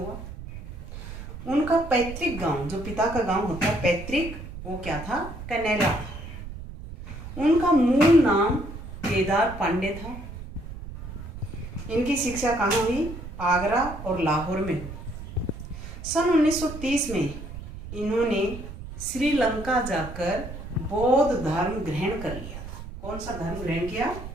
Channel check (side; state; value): right; noise; rumble, 11 dB below the sound